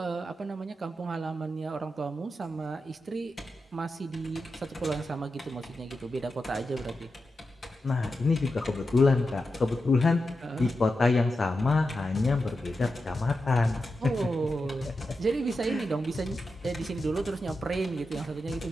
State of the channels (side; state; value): both; normal; correlation 0.89